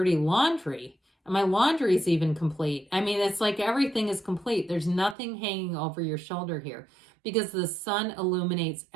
laundry. My laundry is even complete. I mean, it's like everything is complete. There's nothing hanging over your shoulder here because the sun illuminates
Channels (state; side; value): drops out; left; at 5.2 s